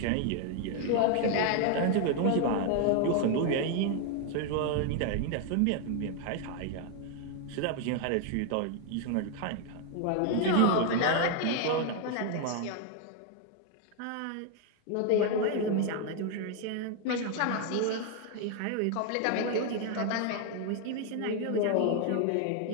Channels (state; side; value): different; both; correlation 0.00